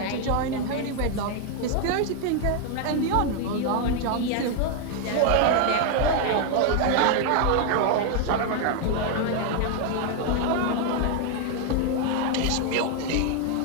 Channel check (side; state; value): both; different; correlation 0.00